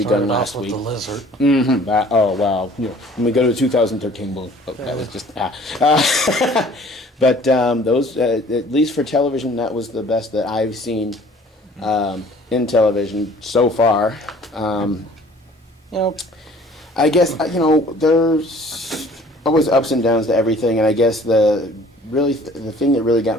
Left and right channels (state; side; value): normal; both; correlation 0.52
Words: last week. The lizard. Mm-hmm. Oh wow! When we go to 2013, that was just. But those, at least for television, that was the best that I've seen in television so far. I guess there's always ups and downs to everything, and I guess the thing that really got